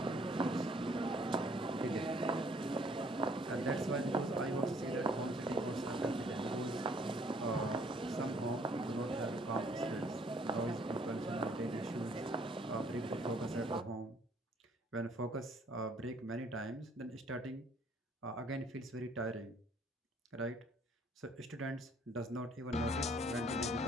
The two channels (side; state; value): both; normal; correlation 0.62